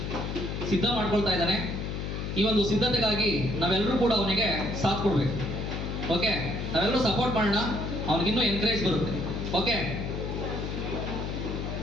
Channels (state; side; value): noise; left; hum, 4 dB below the sound